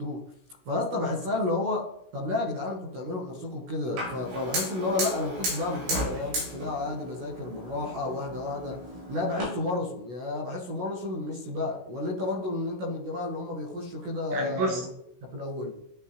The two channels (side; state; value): left; late; 16 ms